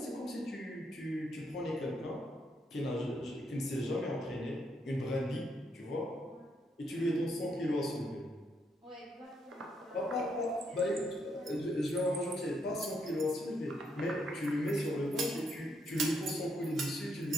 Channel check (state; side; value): normal; both; correlation 0.76